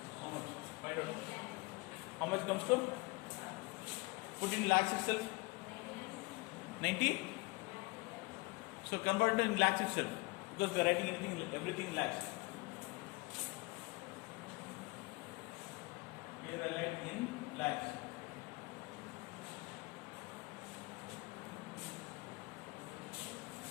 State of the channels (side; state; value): right; quieter; 25.7 dB